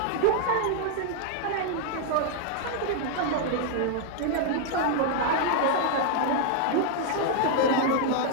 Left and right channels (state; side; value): different; both; correlation 0.00